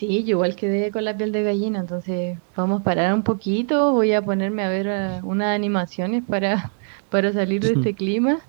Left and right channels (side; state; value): left; silent; digital silence